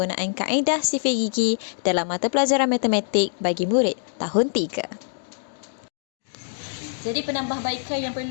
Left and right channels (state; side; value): silent; right; digital silence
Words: kaedah sifir gigi dalam mata pelajaran matematik bagi murid tahun 3. Jadi penambahbaikan yang